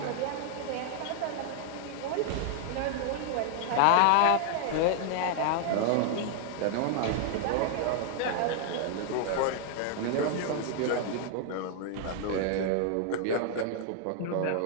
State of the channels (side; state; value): both; different; correlation 0.00